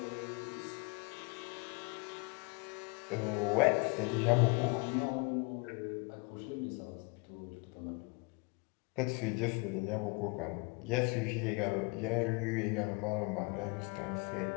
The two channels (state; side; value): quieter; right; 29.7 dB